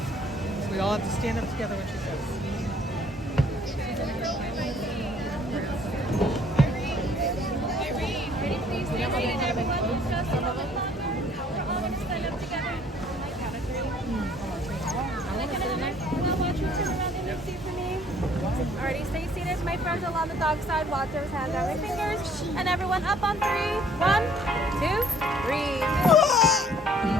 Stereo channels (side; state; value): both; normal; correlation 0.59